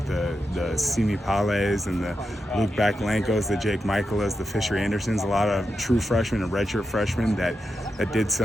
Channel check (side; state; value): both; normal; correlation 0.88